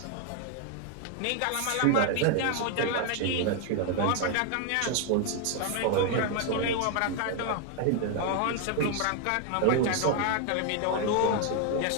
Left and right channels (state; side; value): different; both; correlation 0.01